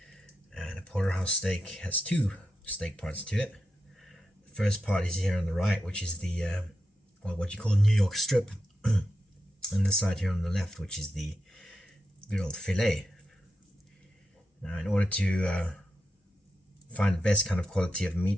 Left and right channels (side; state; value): both; normal; correlation 0.87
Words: and a porterhouse steak has two steak parts to it. The first part is here on the right, which is the what you call New York strip, and the side here on the left, which is the good old fillet. Now, in order to find the best kind of quality of